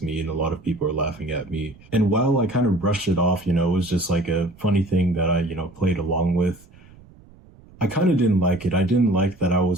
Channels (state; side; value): noise; right; rumble, 24 dB below the sound